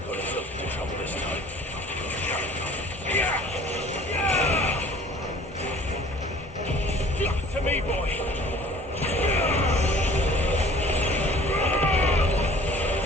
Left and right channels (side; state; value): both; normal; correlation 0.50